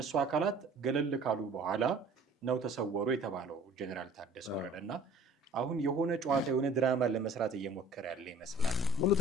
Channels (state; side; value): normal; both; correlation 0.49